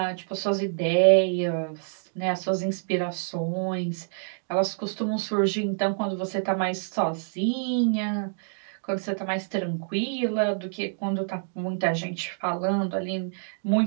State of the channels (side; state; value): left; silent; digital silence